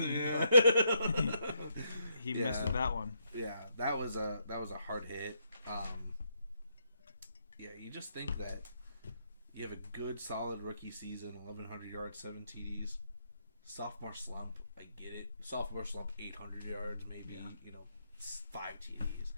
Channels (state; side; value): inverted; both; correlation -0.77